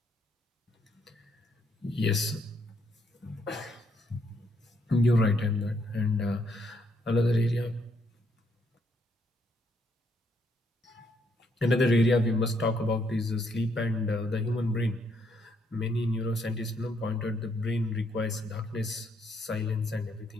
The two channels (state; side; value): normal; both; correlation 0.72